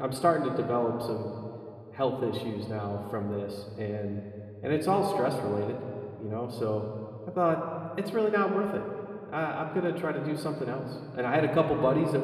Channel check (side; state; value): both; identical; correlation 1.00